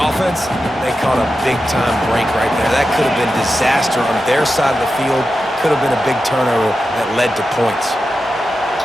they caught a big-time break right there. That could have been disaster on their side of the field. Could have been a big turnover that led to points.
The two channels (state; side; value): normal; both; correlation 0.91